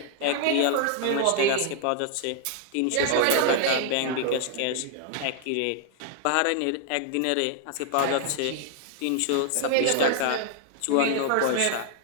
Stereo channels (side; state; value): both; different; correlation 0.00